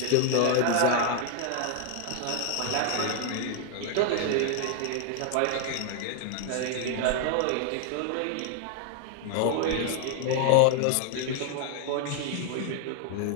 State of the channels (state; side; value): different; both; correlation 0.00